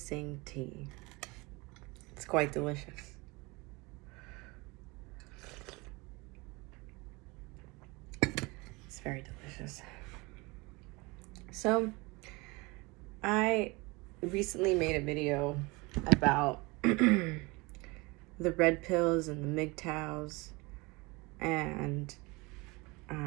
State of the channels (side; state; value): left; quieter; 25.2 dB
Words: tea. It's quite delicious. It's very delicious. So, I recently made a video about the red pills and the MGTOWs, and